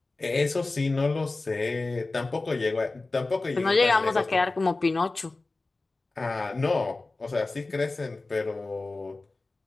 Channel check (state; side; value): quieter; right; 3.3 dB